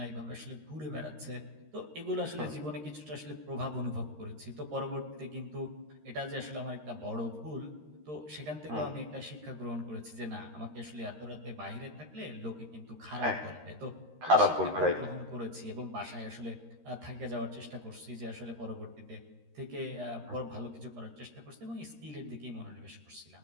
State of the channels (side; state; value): left; late; 13 ms